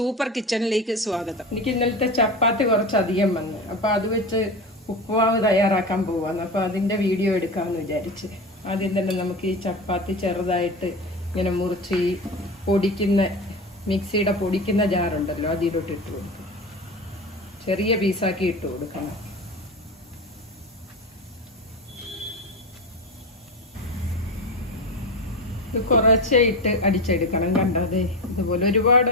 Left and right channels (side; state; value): both; normal; correlation 0.25